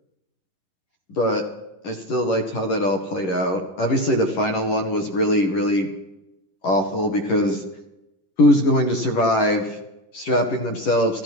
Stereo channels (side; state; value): right; late; 11 ms